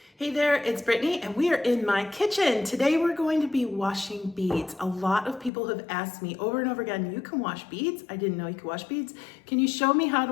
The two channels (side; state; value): right; drops out; at 5.5 s